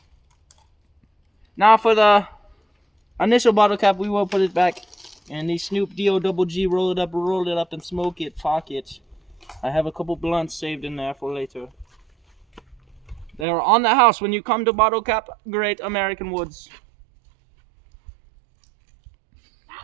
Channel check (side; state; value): left; drops out; at 13.5 s